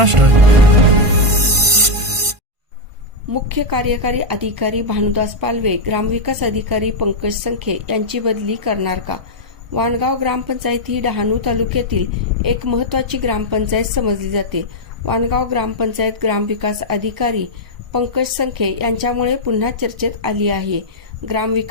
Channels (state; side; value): late; left; 1.5 ms